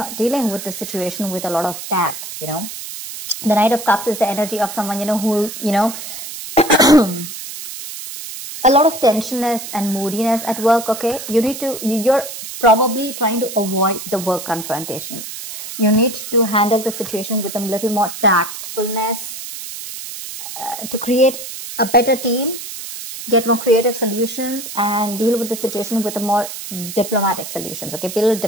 dealing with the situation with a lot of tact, you know? The Knight of Cups is the energy of someone, you know, who, you know, a lot of tensionness and moodiness at work, okay? You're probably trying to avoid the work confrontation. You need to handle the situation with a little more tactfulness, to create a better team, get more creative solutions, and deal with the situation with a more diplomatic solutions, okay? Be a little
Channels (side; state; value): right; noise; hiss, 9 dB below the sound